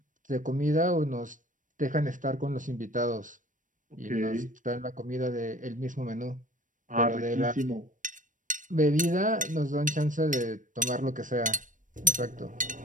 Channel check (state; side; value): late; left; 0.38 ms